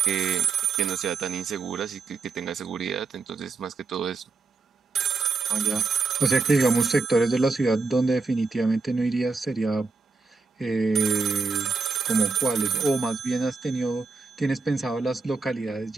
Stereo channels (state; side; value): quieter; left; 4.1 dB